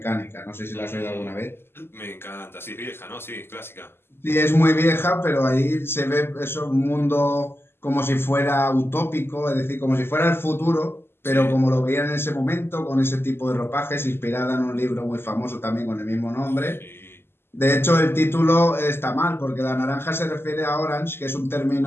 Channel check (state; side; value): late; right; 0.11 ms